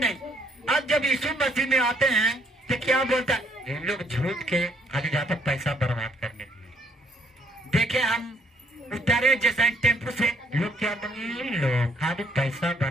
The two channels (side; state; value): both; normal; correlation 0.67